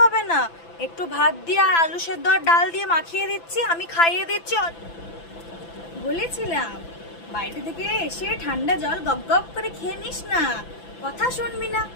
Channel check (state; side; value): late; right; 5.9 ms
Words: না। একটু ভাত দিয়ে আর আলু সেদ্ধ আর ডাল দিয়ে মাখিয়ে দিচ্ছি, আমি খাইয়ে দিচ্ছি। বলেছিলাম বাইরে থেকে এসে ঠান্ডা জল গপ গপ করে খেয়ে নিস না। কথা শুনবি না,